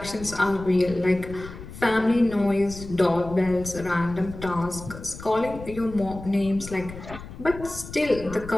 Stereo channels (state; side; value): noise; left; rumble, 13 dB below the sound